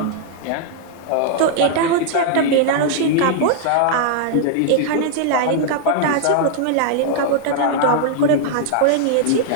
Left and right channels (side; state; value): both; different; correlation -0.01